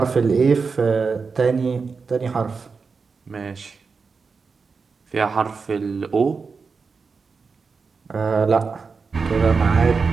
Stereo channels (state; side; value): quieter; left; 4.9 dB